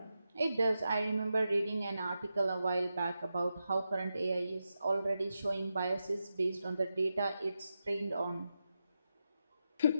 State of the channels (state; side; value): inverted; both; correlation -0.88